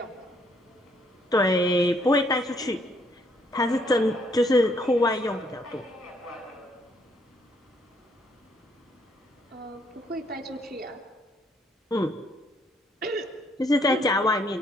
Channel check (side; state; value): both; normal; correlation 0.69